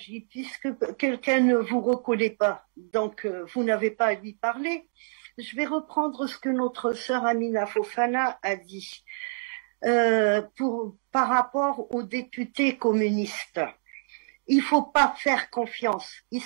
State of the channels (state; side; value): silent; left; digital silence